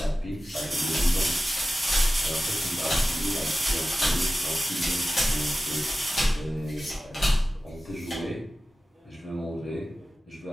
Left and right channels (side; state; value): both; normal; correlation 0.94